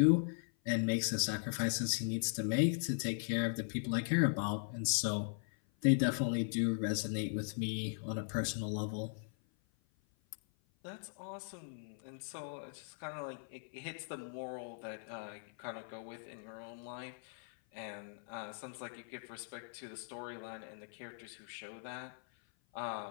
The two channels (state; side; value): silent; right; 52 dB below the other